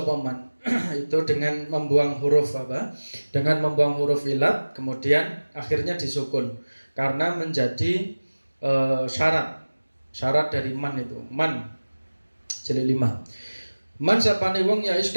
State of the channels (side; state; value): both; inverted; correlation -1.00